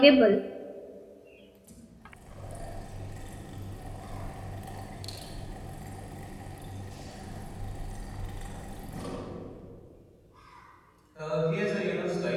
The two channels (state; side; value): identical; both; correlation 1.00